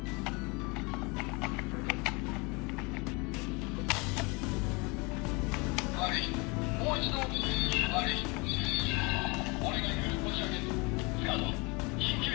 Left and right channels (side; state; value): right; quieter; 28.3 dB